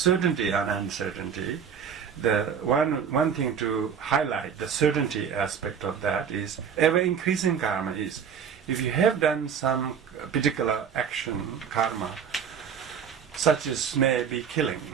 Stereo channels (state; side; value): quieter; left; 7.3 dB